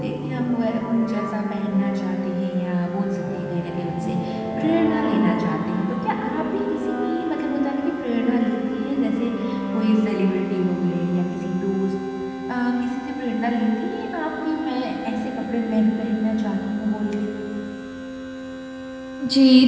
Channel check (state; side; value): identical; both; correlation 1.00